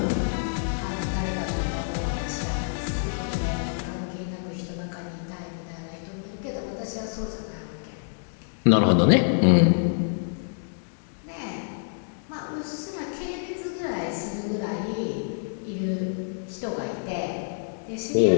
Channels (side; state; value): right; silent; digital silence